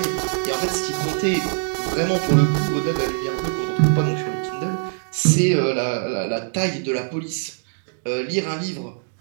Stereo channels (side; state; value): left; silent; digital silence